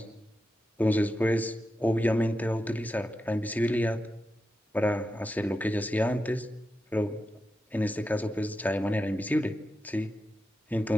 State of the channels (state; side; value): normal; both; correlation 0.89